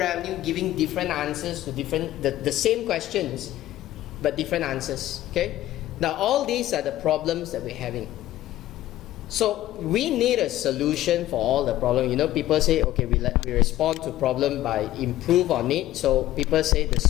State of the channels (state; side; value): quieter; right; 14.5 dB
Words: giving different answers to the same questions, but different answers. Okay. Now, all these are the problems that we're having. So, we need a solution for all the problems. People say, okay, we respond to problem by improve on it. So, people say the